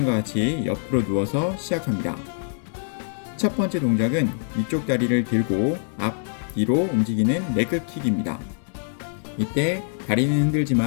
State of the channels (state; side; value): silent; right; 63 dB below the other